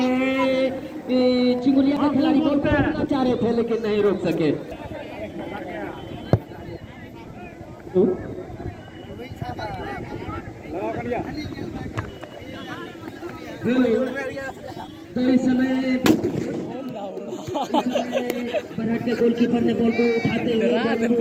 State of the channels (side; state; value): both; identical; correlation 1.00